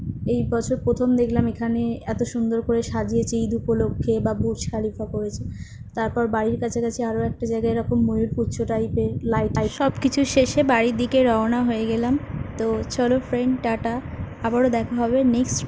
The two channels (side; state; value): both; identical; correlation 1.00